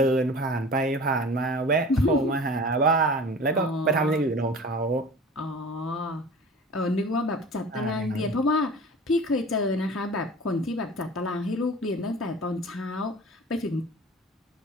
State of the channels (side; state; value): both; normal; correlation 0.40